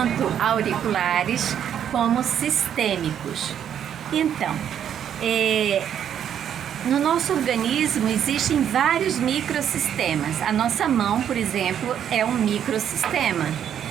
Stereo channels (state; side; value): quieter; left; 9.3 dB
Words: auriculares como sistêmicos. Então, no nosso organismo existem vários microsistemas. A nossa mão, por exemplo, é um microsistema.